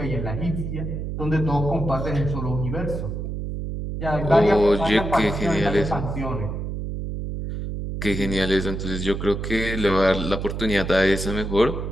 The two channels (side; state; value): right; noise; hum, 5 dB below the sound